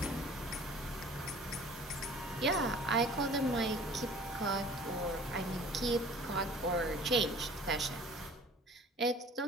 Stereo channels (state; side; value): normal; both; correlation 0.47